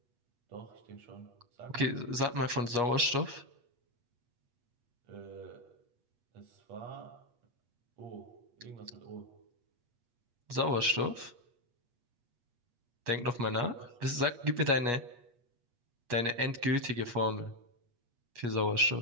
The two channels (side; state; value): left; late; 8.4 ms